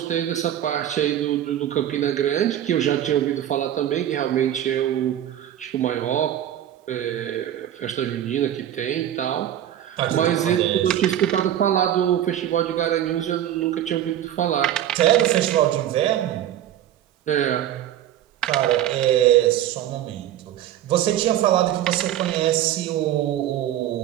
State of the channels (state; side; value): quieter; left; 11.6 dB